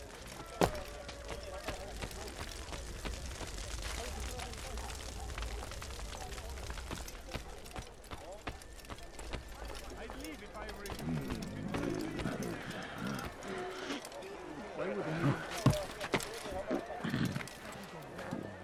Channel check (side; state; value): both; identical; correlation 1.00